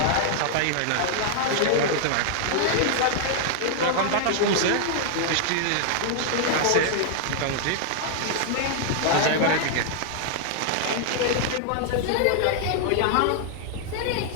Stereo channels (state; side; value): different; both; correlation -0.01